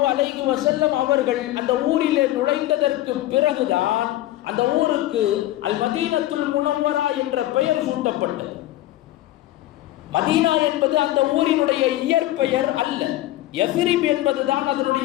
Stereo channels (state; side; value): quieter; right; 15.3 dB